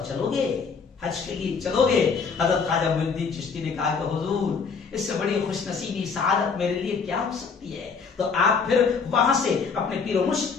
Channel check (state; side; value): quieter; right; 5.4 dB